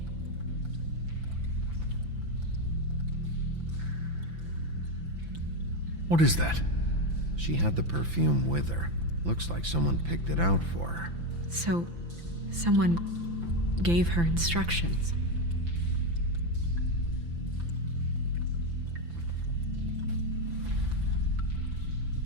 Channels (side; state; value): left; late; 5.9 ms